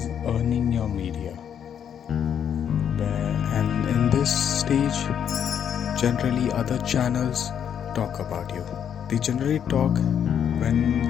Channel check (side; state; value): right; quieter; 8.6 dB